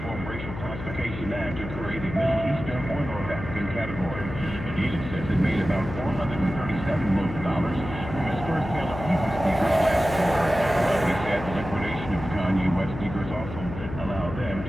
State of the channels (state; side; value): noise; left; hum, 9 dB below the sound